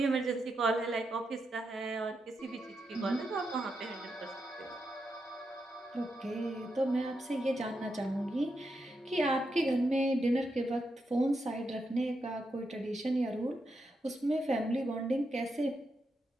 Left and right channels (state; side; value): normal; both; correlation 0.84